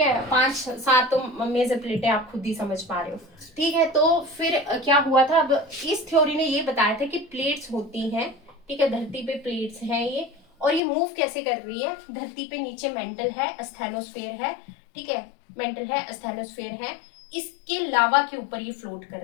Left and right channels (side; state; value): right; drops out; at 10.8 s